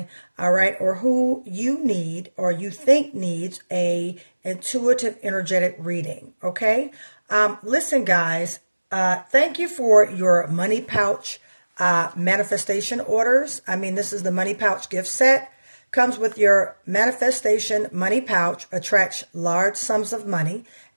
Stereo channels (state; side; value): inverted; both; correlation -1.00